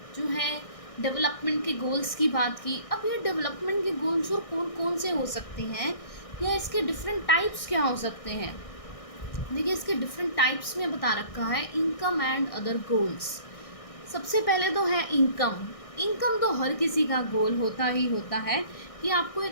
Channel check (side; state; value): right; late; 1.6 ms